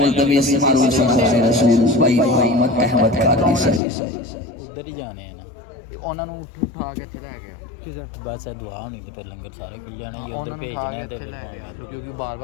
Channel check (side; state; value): right; drops out; at 3.8 s